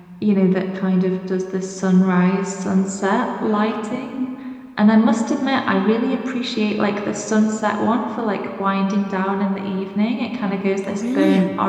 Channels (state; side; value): identical; both; correlation 1.00